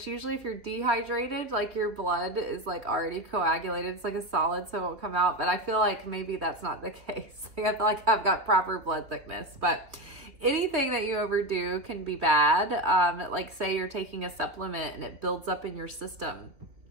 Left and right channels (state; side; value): late; left; 2.9 ms